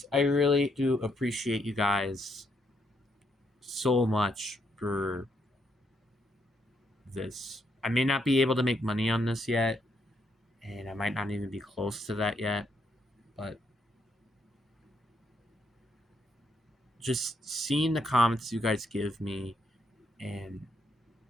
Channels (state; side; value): normal; both; correlation 0.76